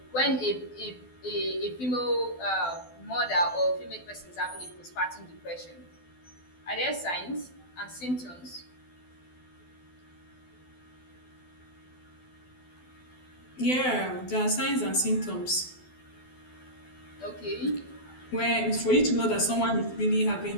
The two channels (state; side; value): late; right; 12 ms